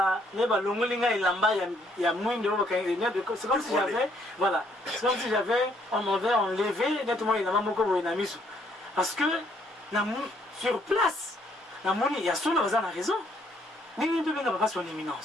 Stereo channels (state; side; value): normal; both; correlation 0.68